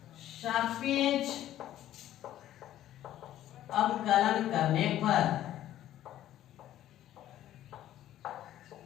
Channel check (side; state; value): right; quieter; 12.7 dB